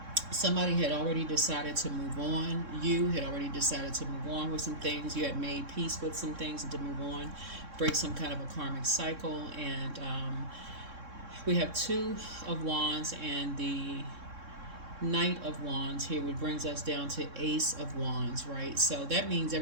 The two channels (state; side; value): late; left; 3.6 ms